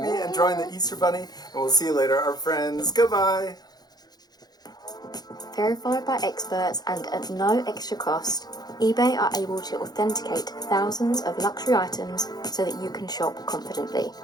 and drawing the Easter Bunny. And we'll see you later, our friends. Goodbye. Verified by experts and at no extra cost, eBay are able to authenticate thousands of luxury items so that you can shop confidently.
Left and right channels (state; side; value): late; right; 0.19 ms